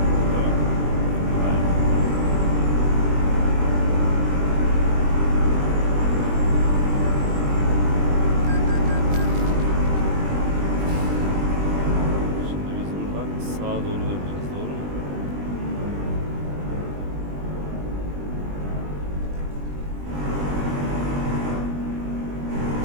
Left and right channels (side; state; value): left; late; 20 ms